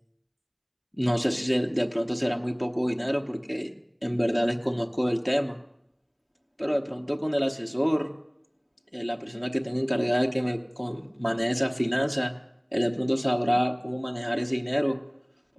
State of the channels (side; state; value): both; identical; correlation 1.00